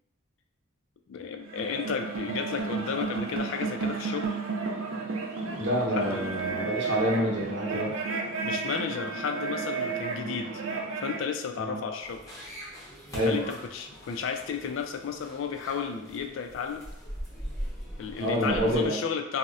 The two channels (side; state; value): both; normal; correlation 0.21